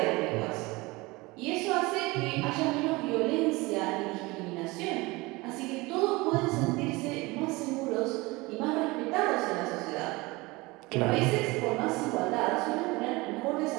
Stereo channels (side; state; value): left; quieter; 23.0 dB